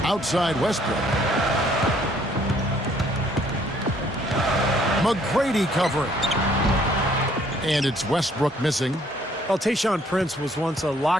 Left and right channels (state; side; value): normal; both; correlation 0.63